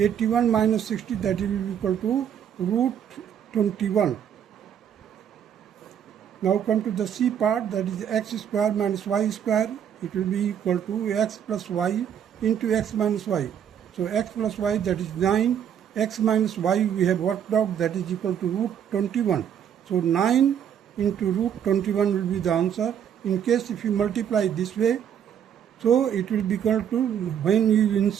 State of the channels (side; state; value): left; quieter; 9.0 dB